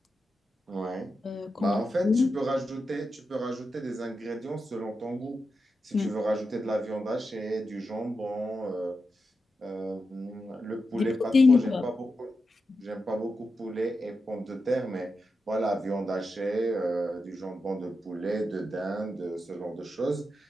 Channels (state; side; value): normal; both; correlation 0.89